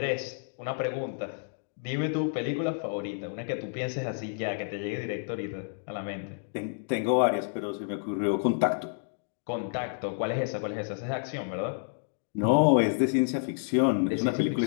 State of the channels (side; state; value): right; silent; digital silence